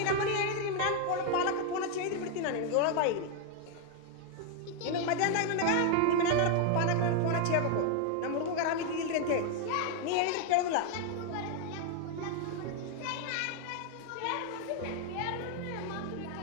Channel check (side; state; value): both; different; correlation 0.00